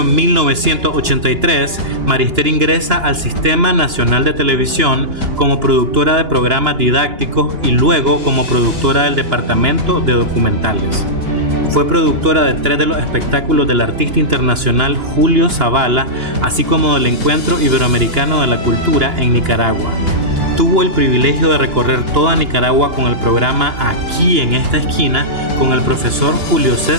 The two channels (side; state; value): left; late; 2.9 ms